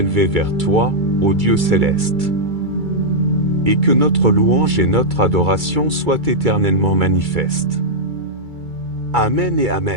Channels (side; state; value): left; late; 2.3 ms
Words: vers toi, ô Dieu céleste, et que notre louange et notre adoration soient éternellement manifestes. Amen et